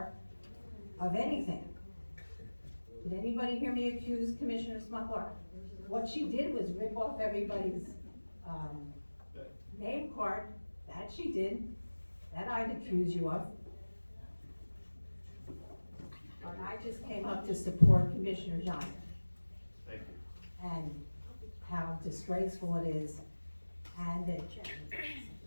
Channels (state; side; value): inverted; both; correlation -1.00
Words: of anything. Did anybody hear me accuse Commissioner Smuckler? What she did was rip off everybody's, name card. That she did. That I'd accuse you of. And I just came up to support Commissioner John. Thank you. And how disgraceful it is, and that